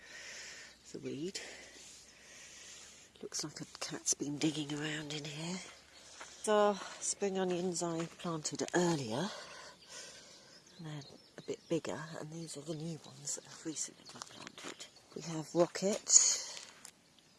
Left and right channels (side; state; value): both; identical; correlation 1.00